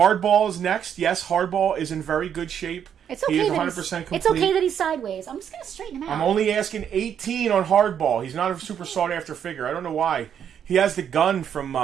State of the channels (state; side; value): quieter; left; 8.6 dB